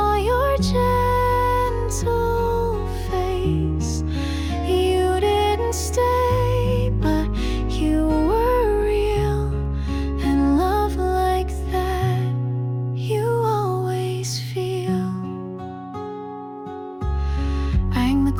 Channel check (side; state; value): both; identical; correlation 1.00